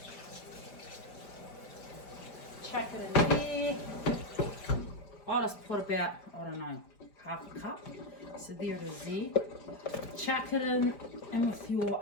Chuck it in there. I'll just put about, I don't know, half a cup. So there it is there. Chuck it in with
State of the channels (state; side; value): late; right; 5.0 ms